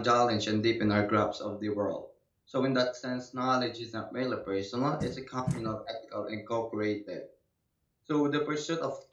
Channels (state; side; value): identical; both; correlation 1.00